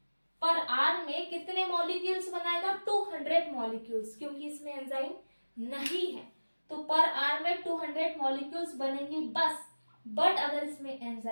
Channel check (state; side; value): inverted; both; correlation -1.00